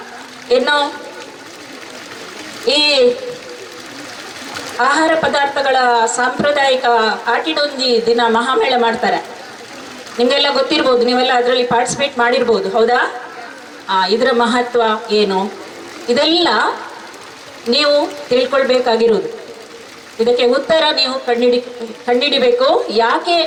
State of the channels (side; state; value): both; identical; correlation 1.00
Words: ಇನ್ನು ಈ ಆಹಾರ ಪದಾರ್ಥಗಳ ಸಾಂಪ್ರದಾಯಿಕ ಆಟಿಡೊಂಜಿ ದಿನ ಮಹಾಮೇಳ ಮಾಡ್ತಾರೆ. ನಿಮಗೆಲ್ಲ ಗೊತ್ತಿರ್ಬೋದು, ನೀವೆಲ್ಲ ಅದರಲ್ಲಿ ಪಾರ್ಟಿಸಿಪೇಟ್ ಮಾಡಿರ್ಬೋದು, ಹೌದಾ? ಇದರ ಮಹತ್ವ ಏನು, ಇದೆಲ್ಲ ನೀವು ತಿಳ್ಕೊಳ್ಬೇಕಾಗಿರೋದು. ಇದಕ್ಕೆ ಉತ್ತರ ನೀವು ಕಂಡಿಡಿಬೇಕು. ಯಾಕೆ